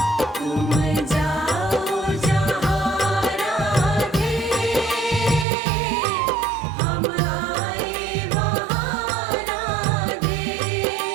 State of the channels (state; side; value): drops out; left; at 5.5 s